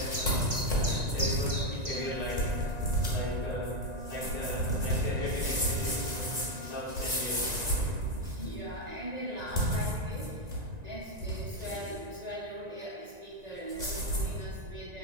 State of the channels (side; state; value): left; late; 1.9 ms